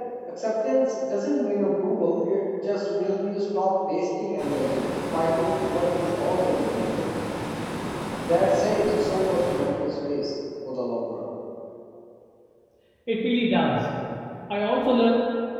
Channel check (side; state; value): both; identical; correlation 1.00